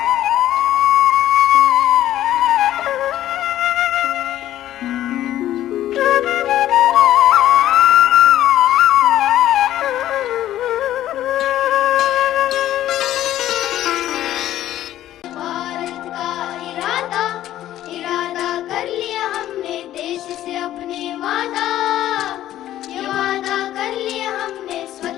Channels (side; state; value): right; quieter; 13.0 dB